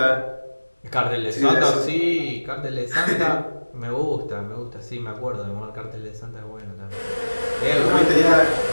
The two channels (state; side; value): inverted; both; correlation -1.00